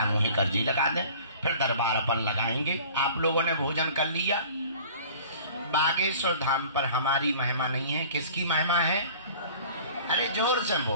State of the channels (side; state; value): both; inverted; correlation -0.46